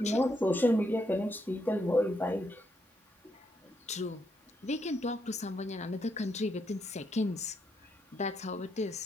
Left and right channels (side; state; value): both; normal; correlation 0.78